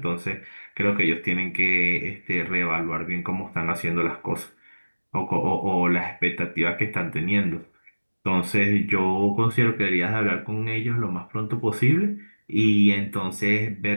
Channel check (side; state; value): both; inverted; correlation -1.00